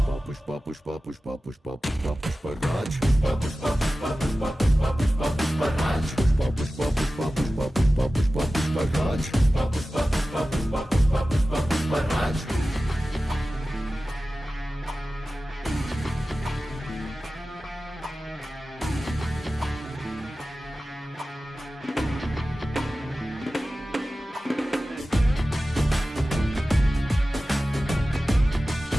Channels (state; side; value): normal; both; correlation 0.95